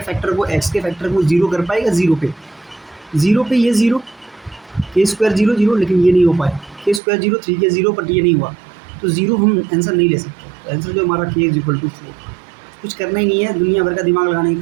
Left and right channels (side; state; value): left; drops out; at 7.0 s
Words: को X के फैक्टर को जीरो कर पाएगा? जीरो पे ये जीरो, K² 0 0, लेकिन ये नहीं हो पाया। K² 0, 3K 0, बट ये नहीं हुआ, तो जीरो हम आंसर नहीं ले सकते। तो आंसर जो हमारा K = 4। कुछ करना ही नहीं है, दुनिया भर का दिमाग लगाने की